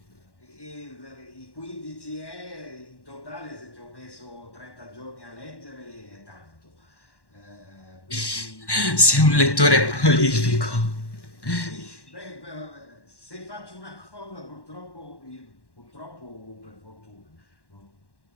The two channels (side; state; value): right; late; 1.1 ms